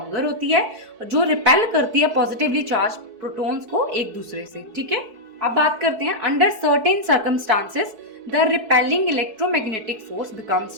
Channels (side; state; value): left; late; 4.6 ms